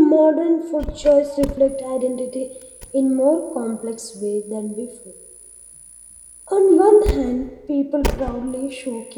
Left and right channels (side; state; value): both; identical; correlation 1.00